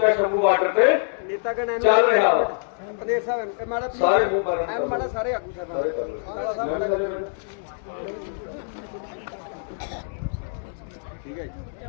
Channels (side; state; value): right; silent; digital silence